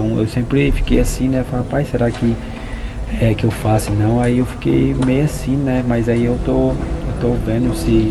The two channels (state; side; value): identical; both; correlation 1.00